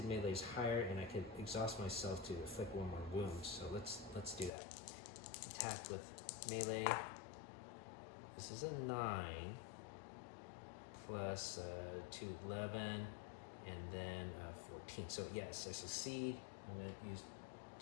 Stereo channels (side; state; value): right; drops out; at 4.5 s